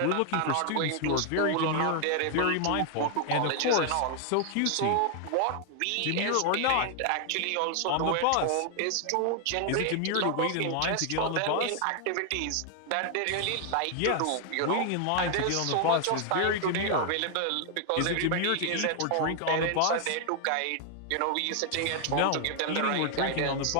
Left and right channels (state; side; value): different; both; correlation 0.00